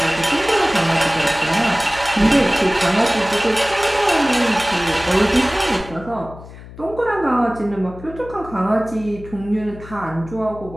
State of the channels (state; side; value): noise; left; hum, 16 dB below the sound